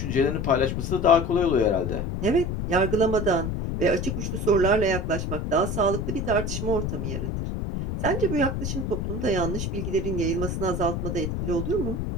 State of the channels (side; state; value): left; noise; rumble, 2 dB below the sound